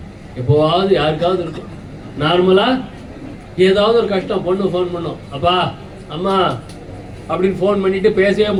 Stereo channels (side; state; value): both; identical; correlation 1.00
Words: எப்போவாவது யாருக்காவது இருக்கும். நார்மலா ஏதாவது ஒரு கஷ்டம், பொண்ணு ஃபோன் பண்ணோம், அப்பா அம்மா அப்படின்னு ஃபோன் பண்ணிட்டு பேசவே